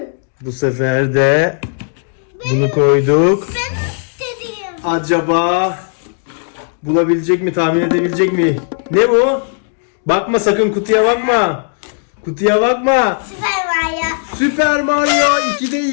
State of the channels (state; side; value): silent; right; digital silence